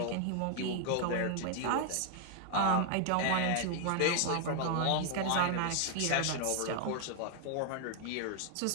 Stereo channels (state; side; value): different; both; correlation 0.00